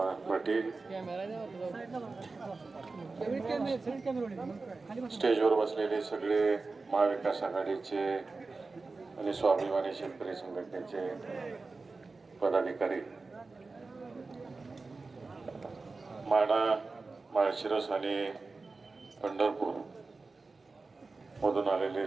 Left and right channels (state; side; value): quieter; left; 3.8 dB